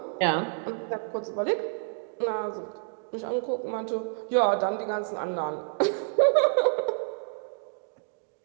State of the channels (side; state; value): left; silent; 59 dB below the other